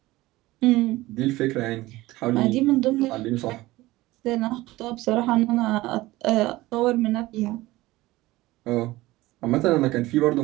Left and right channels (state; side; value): quieter; left; 18.6 dB